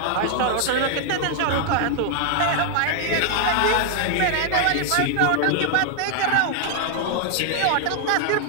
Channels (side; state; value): both; different; correlation 0.00